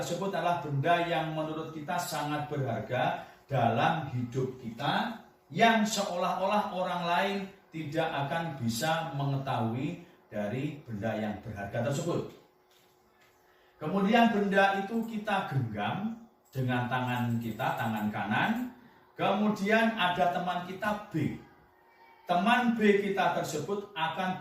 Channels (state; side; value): identical; both; correlation 1.00